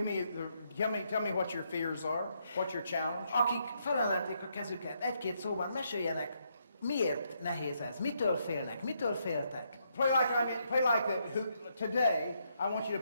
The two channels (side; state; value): both; inverted; correlation -0.76